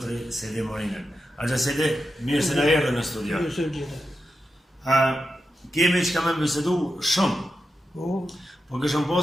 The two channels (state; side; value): normal; both; correlation 0.89